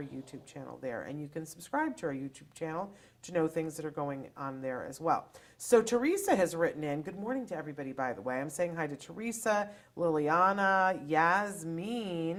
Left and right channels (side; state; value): both; identical; correlation 1.00